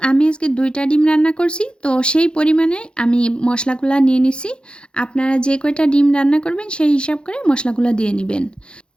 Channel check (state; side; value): late; right; 0.053 ms